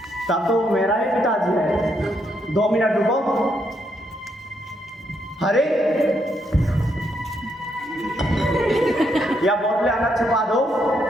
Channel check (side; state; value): both; normal; correlation 0.76